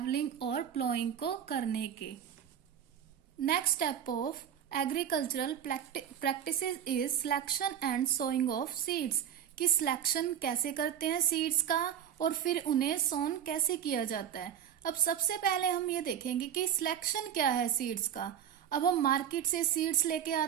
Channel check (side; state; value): left; quieter; 9.2 dB